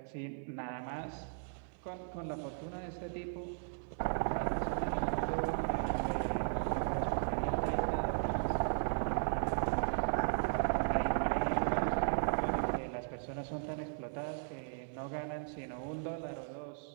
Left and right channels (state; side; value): silent; left; 53 dB below the other